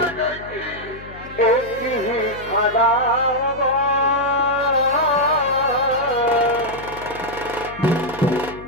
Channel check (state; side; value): noise; left; hum, 16 dB below the sound